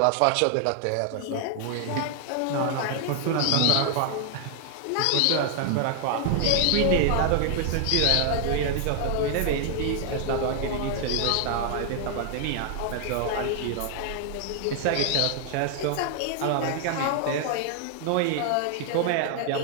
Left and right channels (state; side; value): different; both; correlation 0.00